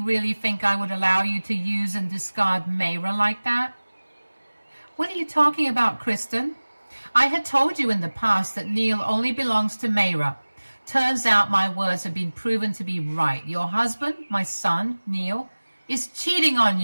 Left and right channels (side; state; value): both; inverted; correlation -1.00